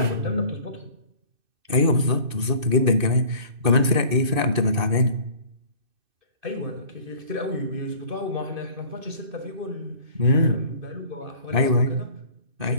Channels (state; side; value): late; left; 2.6 ms